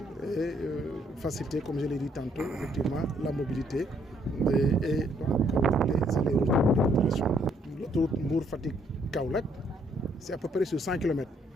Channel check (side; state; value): both; normal; correlation 0.68